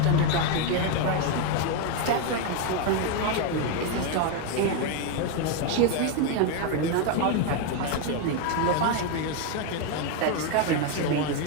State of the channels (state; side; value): different; both; correlation 0.02